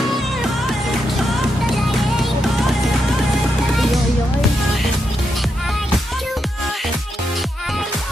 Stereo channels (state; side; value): normal; both; correlation 0.83